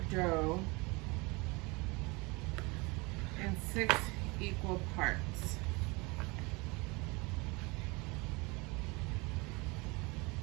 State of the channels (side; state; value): left; quieter; 26.5 dB